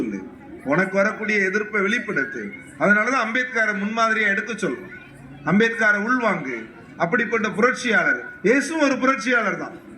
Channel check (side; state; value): both; identical; correlation 1.00